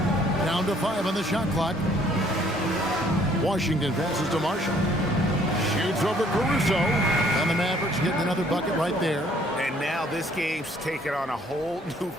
Down to 5 on the shot clock. Washington passes to Marshall. Shoots over Caruso. And the Mavericks getting another bucket right there. And now this game's taken on a whole new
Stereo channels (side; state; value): both; normal; correlation 0.61